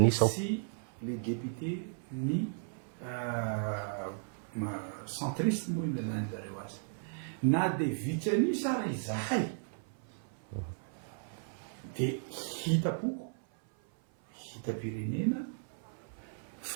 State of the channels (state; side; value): silent; left; 54 dB below the other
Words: sy les député ny centriste moa ina zany zareo azy na de vitsianisa raha izahay dia hitapoko hitam-pirenena